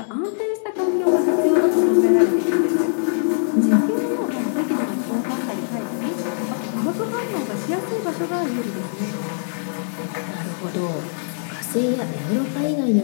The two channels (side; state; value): right; silent; digital silence